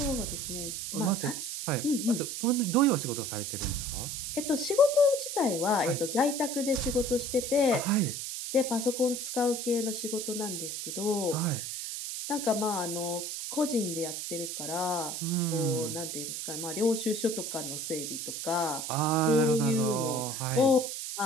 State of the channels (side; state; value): right; noise; hiss, 5 dB below the sound